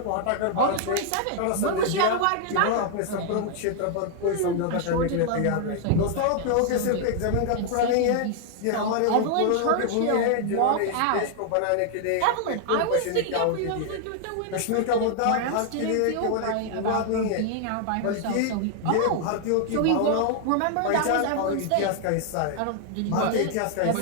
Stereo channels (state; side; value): different; both; correlation 0.00